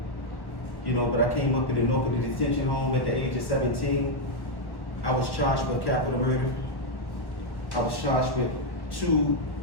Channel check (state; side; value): late; right; 1.1 ms